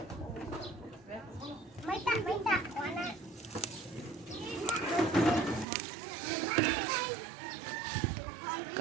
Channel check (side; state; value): left; drops out; at 5.7 s